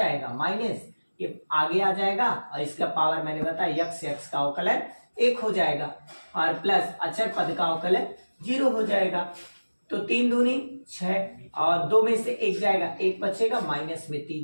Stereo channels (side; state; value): both; inverted; correlation -1.00